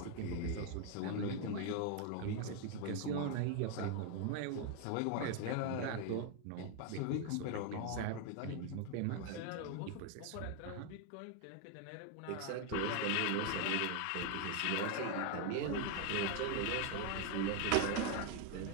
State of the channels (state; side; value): different; both; correlation 0.01